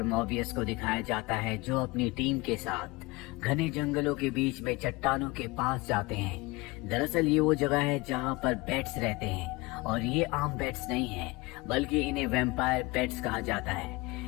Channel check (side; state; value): right; quieter; 23.4 dB